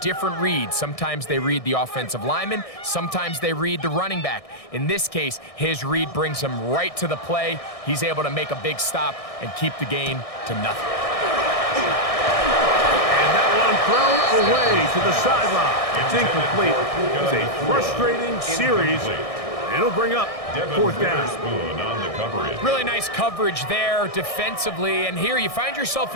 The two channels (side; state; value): right; late; 1.6 ms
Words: reads. Sometimes they read the offensive lineman. Sometimes they read the running back. In this case, his read brings him right to the play. He's able to make a big stop and keep the gain to nothing. And that one thrown away to the sideline. It's incomplete. It's a frustrating series. It'll bring up fourth down. Really nice coverage there defensively. And here you find yourself